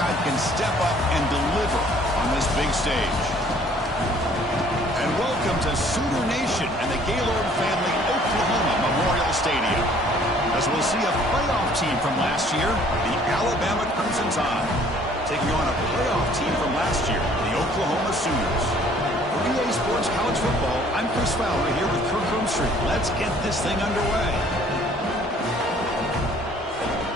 can step up and deliver on this big stage? And welcome to Sooner Nation and the Gaylord Family Oklahoma Memorial Stadium, as we'll see a playoff team from last year, the Alabama Crimson Tide, taking on a playoff team from last year, the Oklahoma Sooners. For EA Sports College Football, I'm Chris Fowler here with Kirk Hermstreet. Let's get this thing underway.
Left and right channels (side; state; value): both; normal; correlation 0.57